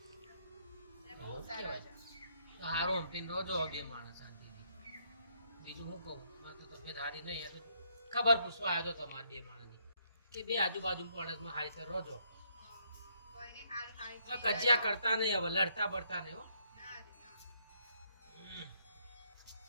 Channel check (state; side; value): inverted; both; correlation -0.72